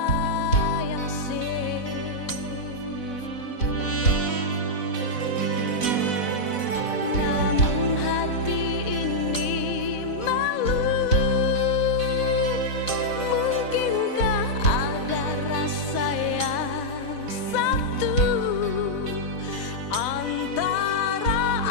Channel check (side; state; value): right; late; 4.1 ms